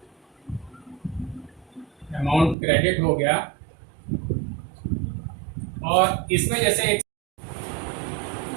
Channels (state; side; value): drops out; left; at 2.6 s